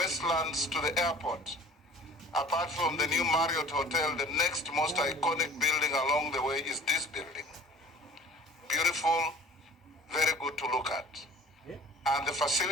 to the airport, apart from the new Marriott Hotel, the next most iconic building along the way is this building. Beautiful, very good to look at. And the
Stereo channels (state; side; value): normal; both; correlation 0.47